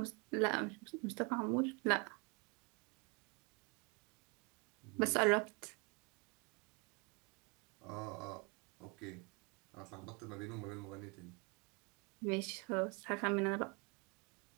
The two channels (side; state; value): left; quieter; 31.2 dB